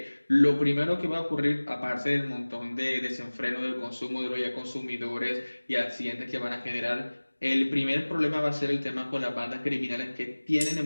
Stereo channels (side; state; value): both; inverted; correlation -1.00